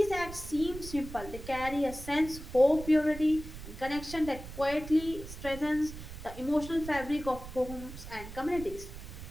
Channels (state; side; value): noise; right; rumble, 12 dB below the sound